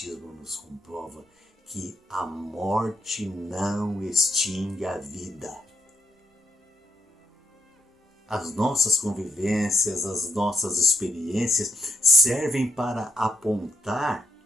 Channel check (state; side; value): normal; both; correlation 0.78